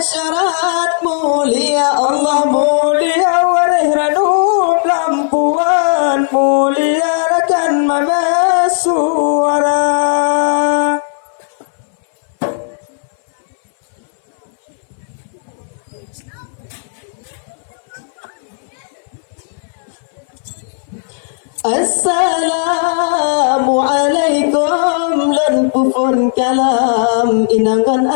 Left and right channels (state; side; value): silent; right; 60 dB below the other